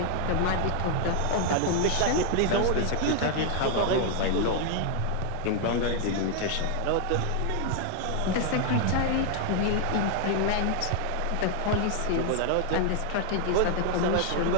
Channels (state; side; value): different; both; correlation 0.00